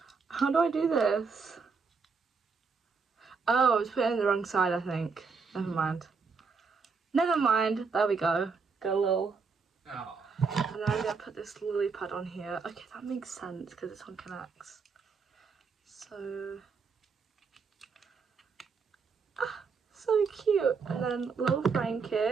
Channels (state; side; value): quieter; left; 5.1 dB